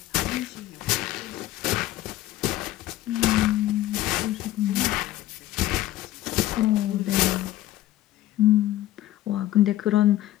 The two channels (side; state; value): right; quieter; 14.9 dB